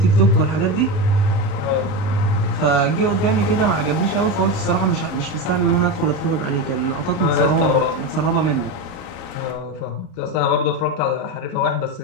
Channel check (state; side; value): late; right; 38 ms